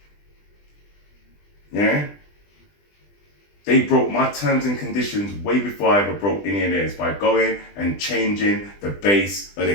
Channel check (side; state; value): right; late; 20 ms